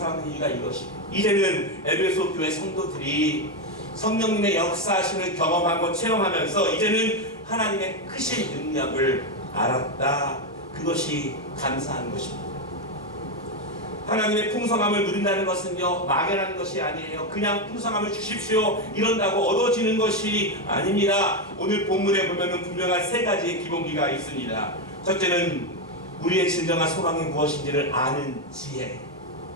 이유가 이것입니다. 이제는 에베소 교회 성도들이 성령님의 역사하심을 경험하고 체험하면서 이제는 하나님의 크신 능력을 알았다. 그것이 감사한 것입니다. 하나님의 풍성함을 누린다는 것은요, 막연한 것이 아니에요. 그냥 풍성함을 주십시오 이런다고 얻어지는 것이 아닙니다. 오늘 본문에 보면은 분명한 세 가지의 기본기가 있습니다. 첫째는 우리의 진정한 소망이 무엇인지를 아는 지혜.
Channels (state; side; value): normal; both; correlation 0.08